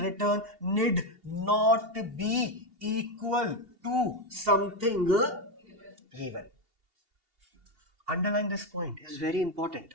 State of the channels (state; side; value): late; left; 2.8 ms